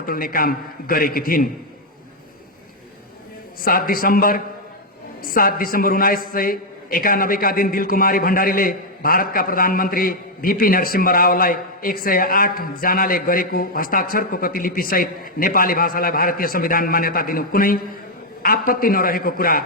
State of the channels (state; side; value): normal; both; correlation -0.01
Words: काम गरेकी थिइन्। 7 दिसम्बर 1991 का दिन दिलकुमारी भण्डारीले भारतका प्रधानमन्त्री बीपी नरसिंह रावलाई 108 जनाले गरेको हस्ताक्षरको प्रतिलिपि सहित नेपाली भाषालाई भारतीय संविधान मान्यता दिनु कुनै आपत्ति नरहेको कुरा